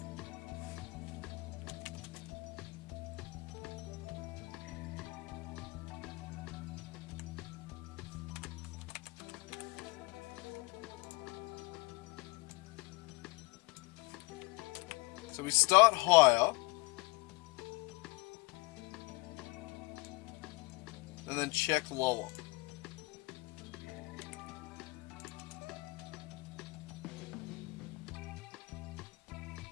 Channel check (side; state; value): right; quieter; 24.5 dB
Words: So we start higher. And then check lower.